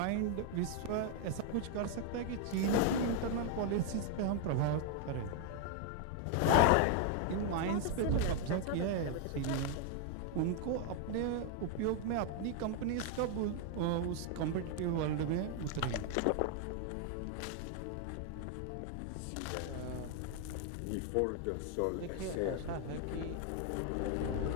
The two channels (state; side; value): different; both; correlation 0.00